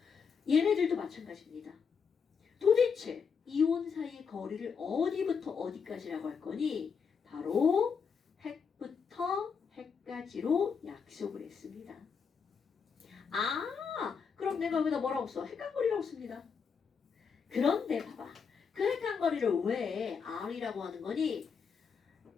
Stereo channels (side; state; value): right; quieter; 6.1 dB